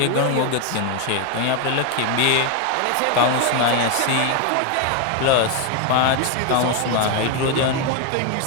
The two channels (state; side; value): different; both; correlation 0.01